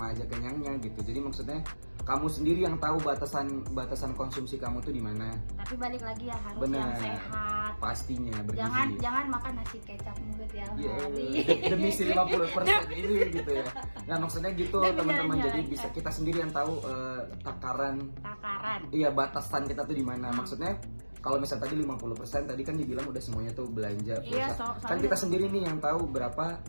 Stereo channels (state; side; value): inverted; both; correlation -1.00